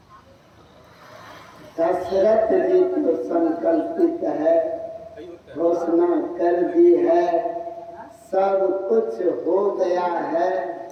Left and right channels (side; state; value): both; identical; correlation 1.00